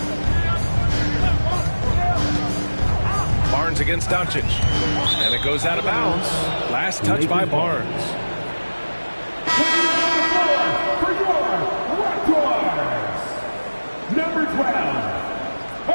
Barnes against Doncic. And it goes out of bounds. Last touch by Barnes. For your Raptors, number 12,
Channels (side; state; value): both; inverted; correlation -1.00